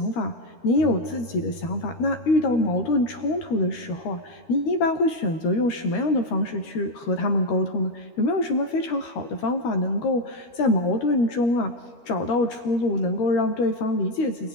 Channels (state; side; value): late; right; 13 ms